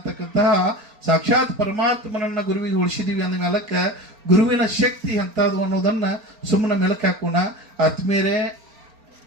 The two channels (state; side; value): late; left; 4.4 ms